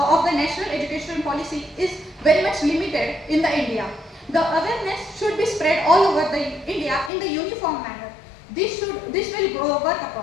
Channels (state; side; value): drops out; right; at 7.1 s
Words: the National Education Policy is very much limited in the India. The awareness should be spread all over the India in the uniform manner. This will work